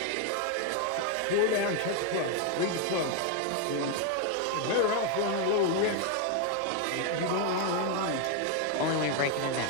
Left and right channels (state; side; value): different; both; correlation 0.01